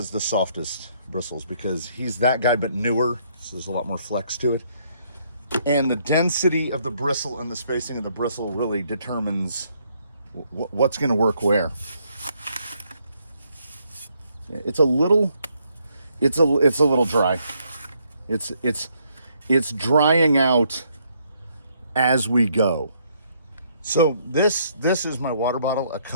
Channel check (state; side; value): inverted; both; correlation -0.70